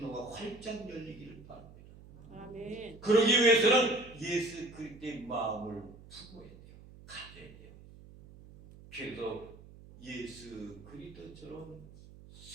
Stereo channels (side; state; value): right; noise; hum, 19 dB below the sound